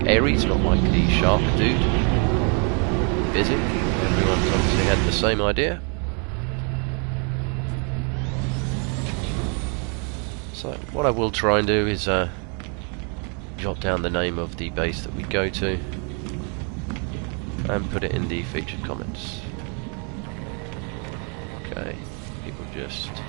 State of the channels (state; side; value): quieter; left; 37.7 dB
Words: Ares, not like the shark dude. Busy. Everyone's obviously had the same idea. So what I will try and do is jot down the name of the base that we go to and put it in the featured comments. Okay, people just